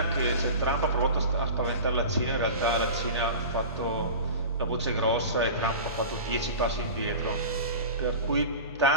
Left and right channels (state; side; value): inverted; both; correlation -0.33